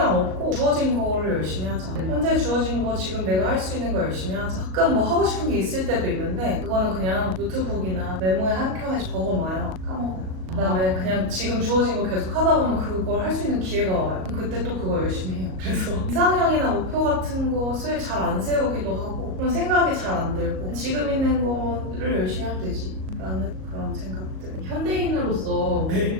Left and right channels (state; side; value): late; left; 38 ms